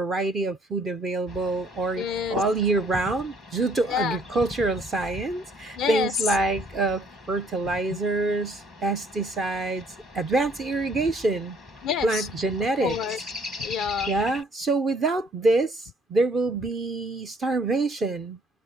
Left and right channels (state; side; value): normal; both; correlation 0.61